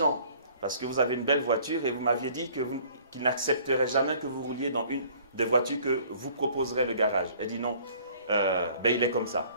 parce que vous avez une belle voiture et vous m'aviez dit qu'il n'accepterait jamais que vous rouliez dans une des voitures que vous proposerez le garage. Elle dit non, il est comme ça.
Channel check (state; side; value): inverted; both; correlation -0.55